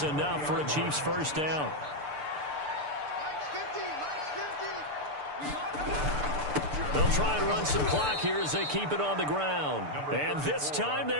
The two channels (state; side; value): late; left; 6.8 ms